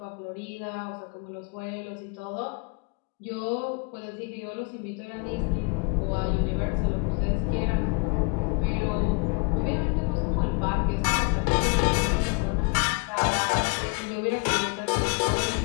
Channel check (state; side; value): quieter; right; 30.4 dB